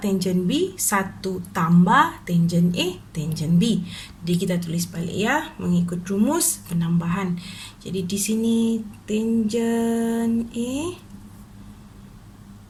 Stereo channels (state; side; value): identical; both; correlation 1.00